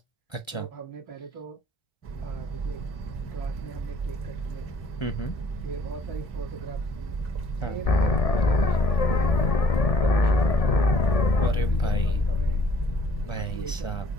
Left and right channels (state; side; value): late; right; 1.3 ms